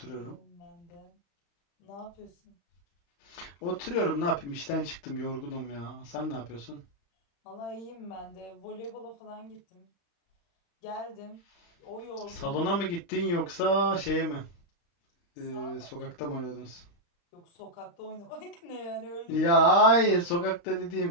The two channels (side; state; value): right; late; 35 ms